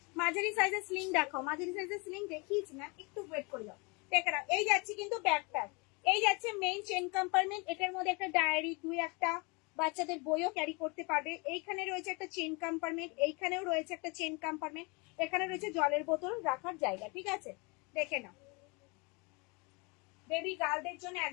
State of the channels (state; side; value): quieter; right; 29.5 dB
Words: মাঝারি সাইজের স্লিং দেখাও। মাঝারি সাইজের স্লিং দেখিয়েছি না, একটু ওয়েট করে যাও। দেখে নাও, এই যাচ্ছে কিন্তু ব্যাকপ্যাক। এই যাচ্ছে মেইন চেন কম্পার্টমেন্ট। এটার মধ্যে একটা ডায়েরি, দুই একটা বাচ্চাদের বইও ক্যারি করতে পারবে। এইখানে রয়েছে একটা চেন কম্পার্টমেন্ট, এইখানেও রয়েছে একটা চেন কম্পার্টমেন্ট, এখানে রয়েছে জলের বোতল রাখার জায়গা, ঠিক আছে? দেখে নাও, বেবি গার্লদের জন্য